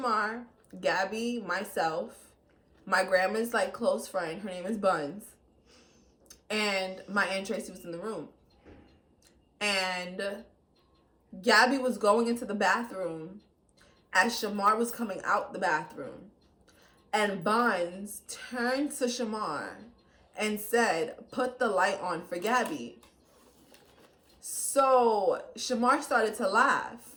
Gabby, myself, my grandma's like close friend. Her name is Buns. And my Aunt Tracy was in the room. And Gabby was going into the bathroom as Shamar was coming out the bathroom. And Buns turned to Shamar and said, "Put the light on for Gabby." So Shamar started to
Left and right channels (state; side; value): identical; both; correlation 1.00